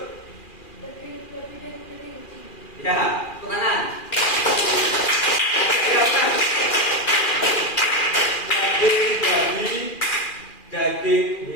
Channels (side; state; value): right; late; 2.4 ms